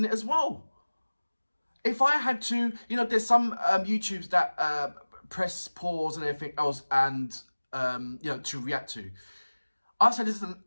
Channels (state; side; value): inverted; both; correlation -1.00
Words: it as well. If I had to, there's some YouTubes that press pause and everything else, and to react to. I've said this